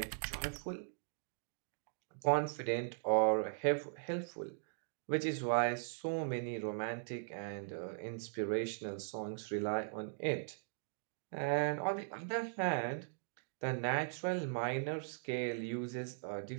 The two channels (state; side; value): silent; left; digital silence